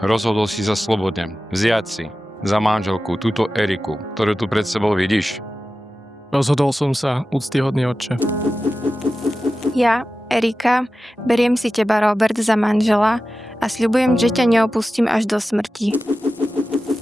rozhodol si sa slobodne vziať si za manželku túto Eriku, ktorú tu pred sebou vidíš. Rozhodol som sa, úctyhodný otče. Ja, Erika, beriem si teba, Robert, za manžela a sľubujem, že ťa neopustím až do smrti.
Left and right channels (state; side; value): normal; both; correlation 0.94